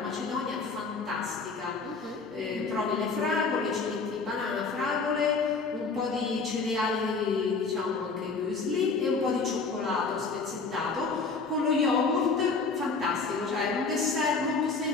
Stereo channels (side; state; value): right; quieter; 4.4 dB